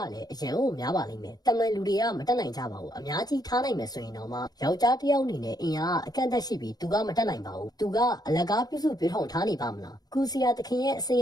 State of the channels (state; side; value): late; right; 0.19 ms